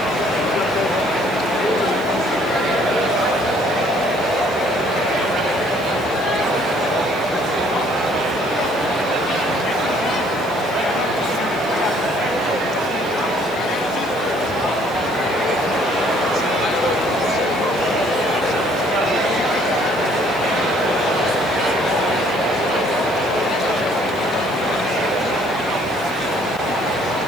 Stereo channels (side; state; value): right; noise; hiss, 22 dB below the sound